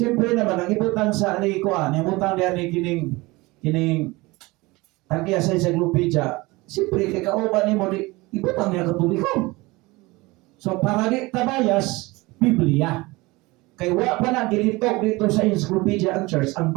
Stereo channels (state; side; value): quieter; left; 22.5 dB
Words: naman ang ibutang sa ang ibutang diyan ni kining tagya sa encyclopedia, siyempre kay kauban nimo di ibutang niya Katoliko. So para di tabayas Biblia. Kay wa pa na gilitok dito sa encyclopedia ang church, ang